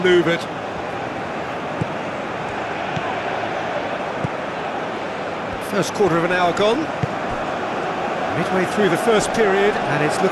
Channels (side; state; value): both; identical; correlation 1.00